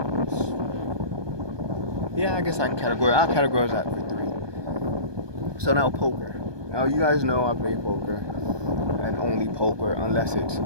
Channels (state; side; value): late; left; 1.2 ms